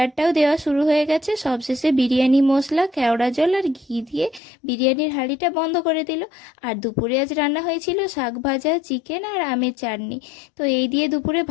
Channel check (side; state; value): right; drops out; at 4.4 s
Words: দেওয়া শুরু হয়ে গেছে। সবশেষে বিরিয়ানি মশলা, কেওড়া জল আর ঘি দিয়ে বিরিয়ানির হাঁড়িটা বন্ধ করে দিল। আর দুপুরে আজ রান্না হয়েছিল শাক ভাজা, চিকেন আর আমের চাটনি। তো এই দিয়ে দুপুরে